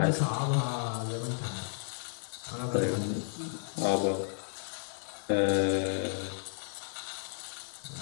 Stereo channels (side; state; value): right; silent; digital silence